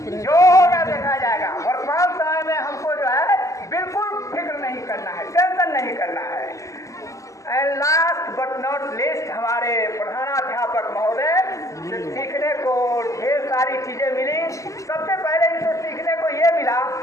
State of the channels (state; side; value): late; right; 0.16 ms